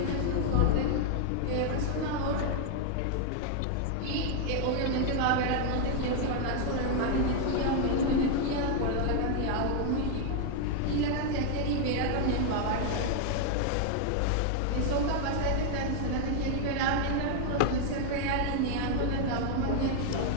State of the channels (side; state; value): both; different; correlation 0.00